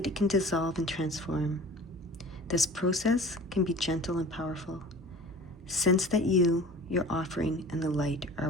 it can dissolve and transform. This process can be gentle and powerful. Sense that you, your offering, and the light are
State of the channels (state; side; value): normal; both; correlation 0.41